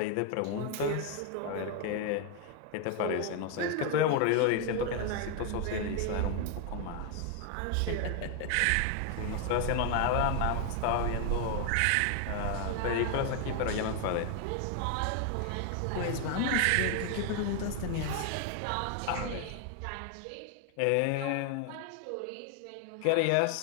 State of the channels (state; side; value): different; both; correlation 0.01